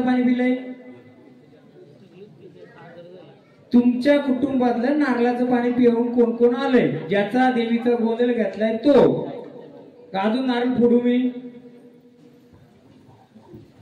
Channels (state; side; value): identical; both; correlation 1.00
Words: पाणी पिलंय? तुमच्या कुटुंबातलं नारळाचं पाणी पिऊन कोण कोण आलंय? ज्याचा देवीचा गोंधळ घेतलाय तो. अजून नारळ फोडू मी?